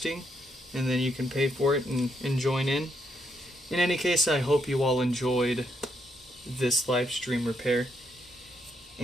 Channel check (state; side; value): normal; both; correlation 0.77